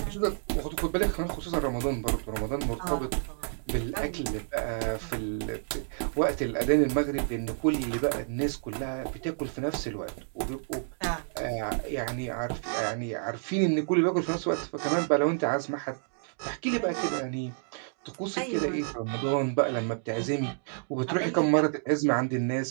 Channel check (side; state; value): left; silent; digital silence